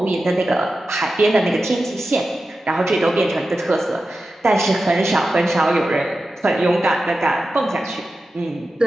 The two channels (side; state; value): both; normal; correlation 0.92